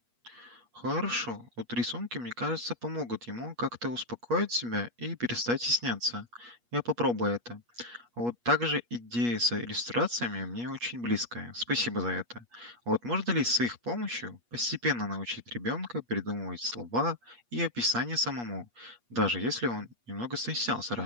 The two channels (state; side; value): late; left; 8.4 ms